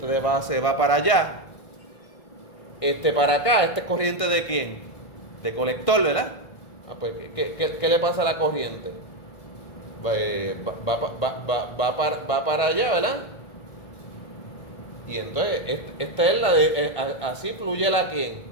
de base va para allá. Para acá, ¿esta es corriente de quién? De colector, ¿verdad? Pues, ¿qué le pasa a la corriente? Va para allá, ¿verdad? Y entonces, esta es la de, así fluye la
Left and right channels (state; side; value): late; right; 1.6 ms